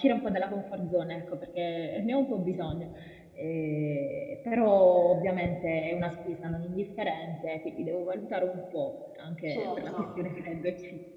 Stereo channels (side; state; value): both; identical; correlation 1.00